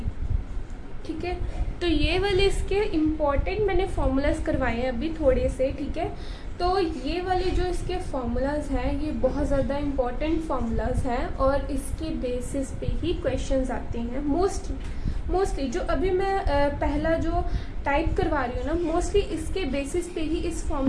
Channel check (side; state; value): both; identical; correlation 1.00